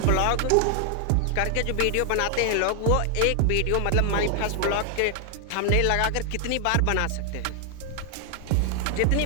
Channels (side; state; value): both; different; correlation 0.00